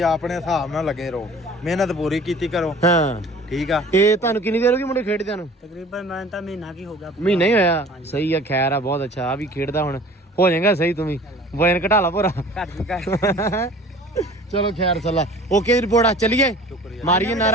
ਆਪਣੇ ਹਿਸਾਬ ਨਾਲ ਲੱਗੇ ਰਹੋ ਮਿਹਨਤ ਪੂਰੀ ਕੀਤੀ ਕਰੋ ਹਾਂ ਠੀਕ ਆ ਇਹ ਤੁਹਾਨੂੰ ਕਿੰਨੀ ਦੇਰ ਹੋ ਗਈ ਮੁੰਡੇ ਖੇਡਦਿਆਂ ਨੂੰ ਤਕਰੀਬਨ ਮੈਂ ਤਾਂ ਮਹੀਨਾ ਕੀ ਹੋ ਗਿਆ ਮਹੀਨਾ ਹੀ ਹੋਇਆ ਸਹੀ ਆ ਖੈਰ ਆ ਬਹੁਤ ਅੱਛਾ ਆ ਵੀ ਖੇਡਦਾ ਹੁਣ ਹੋ ਜਾਏਗਾ ਸਹੀ ਤੂੰ ਵੀ ਵਜਨ ਘਟਾ ਲਾ ਪੂਰਾ ਚਲੋ ਖੈਰ ਸੱਲਾ ਓਕੇ ਰਿਪੋਰਟ ਆ ਚਲੀਏ ਮਾਰੀਏ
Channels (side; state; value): both; normal; correlation 0.46